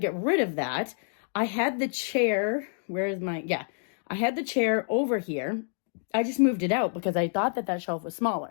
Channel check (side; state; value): right; silent; 59 dB below the other